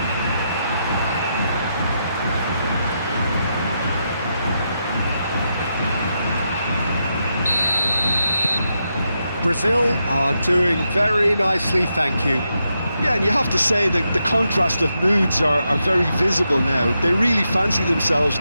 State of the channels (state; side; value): inverted; both; correlation -0.84